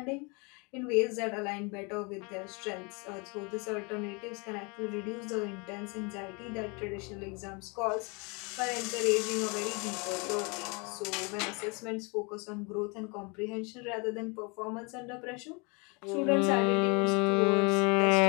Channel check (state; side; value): quieter; right; 30.9 dB